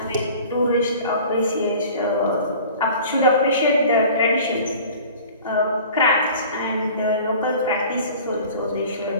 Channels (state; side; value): inverted; both; correlation -0.44